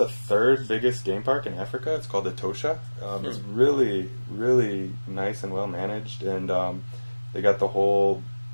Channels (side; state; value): both; inverted; correlation -1.00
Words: third biggest game park in Africa. It's called the Tosha. It's really, really nice and well managed, and they got the whole.